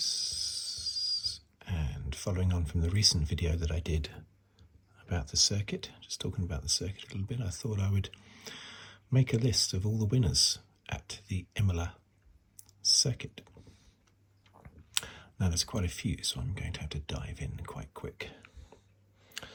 and following on from the recent video that I did about the circuit, just talking about the circuit a little bit, I thought I would make a list of all the winners at the Imola Circuit. Now there's quite a few, so I'm going to have to dive in quite quick.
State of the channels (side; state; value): both; identical; correlation 1.00